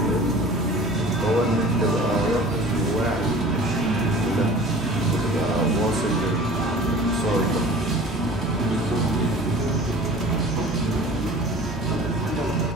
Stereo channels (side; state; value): both; normal; correlation 0.43